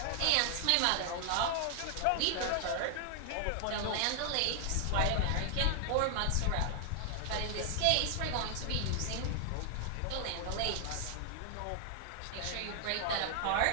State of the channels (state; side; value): different; both; correlation 0.00